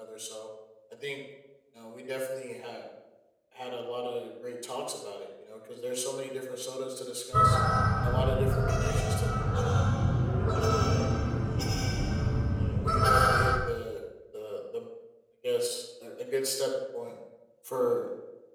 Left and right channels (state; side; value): identical; both; correlation 1.00